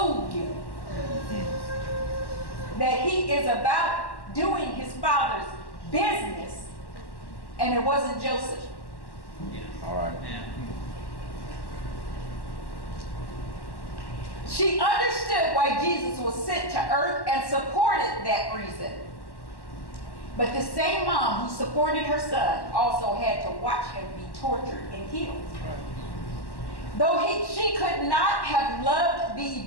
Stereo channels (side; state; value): right; late; 1.1 ms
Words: you that he is about doing his Father's business, and it wasn't Joseph. All right. She understood why Jesus was sent to earth and supported that reason. But the same mom who supported her son also had to watch him be tortured and killed. Right. Though she could not have loved the